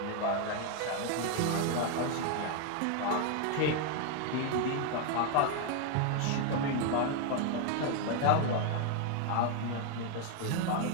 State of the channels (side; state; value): both; different; correlation 0.01